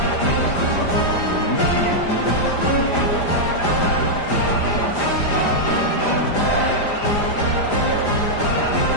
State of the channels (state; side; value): late; right; 5.0 ms